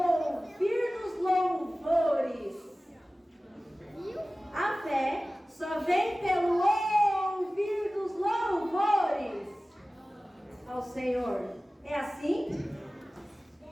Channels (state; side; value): normal; both; correlation 0.97